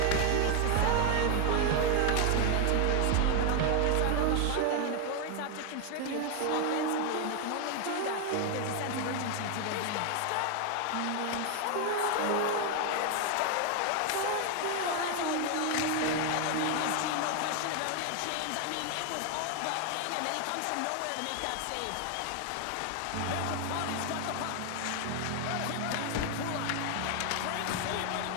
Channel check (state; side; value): different; both; correlation 0.00